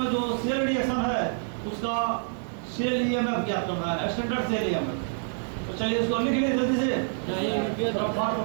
जो सेल रिएक्शन है उसका सेल ईएमएफ ज्ञात करना है, स्टैंडर्ड सेल ईएमएफ। तो चलिए इसको लिख लीजिए जल्दी से,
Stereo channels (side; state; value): left; silent; 60 dB below the other